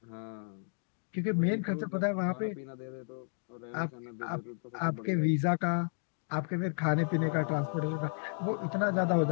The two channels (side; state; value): right; silent; digital silence